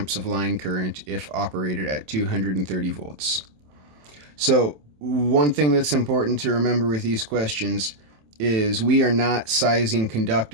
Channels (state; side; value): late; left; 27 ms